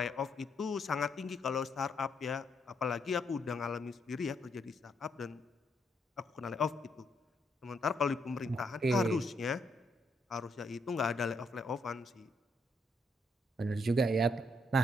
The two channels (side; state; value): both; normal; correlation 0.75